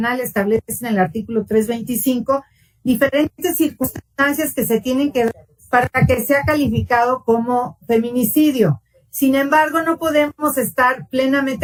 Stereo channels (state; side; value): identical; both; correlation 1.00